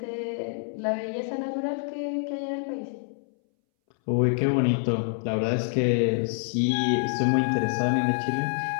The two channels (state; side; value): silent; right; 60 dB below the other